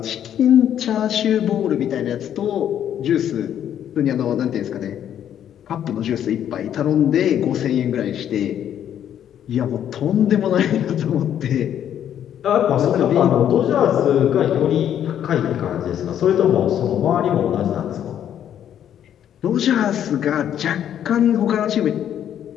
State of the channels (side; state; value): right; quieter; 10.0 dB